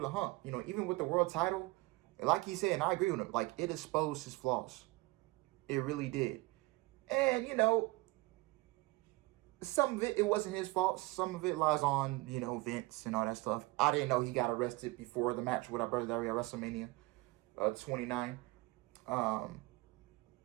hump. You know, even with the world title, like he said, and I agree with him, like, it exposed his flaws. It really did. And, you know, some of it wasn't his fault. Some of it lies on, you know, Vince and all that stuff. I didn't know he got arrested before the match with our brother Dario at WrestleMania 29.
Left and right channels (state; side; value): quieter; left; 22.4 dB